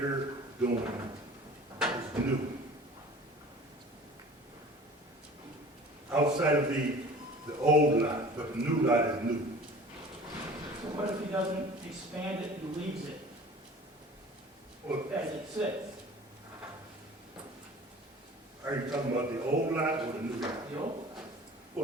doing is new. Outside of the old lot, but the new lot is new. So what if he doesn't expand it and leaves it Well, as it sits? are you talking about the old lot or the new lot? The old?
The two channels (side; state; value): both; normal; correlation 0.44